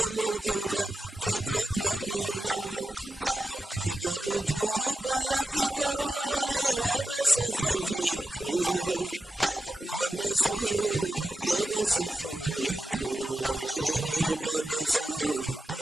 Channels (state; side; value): normal; both; correlation 0.91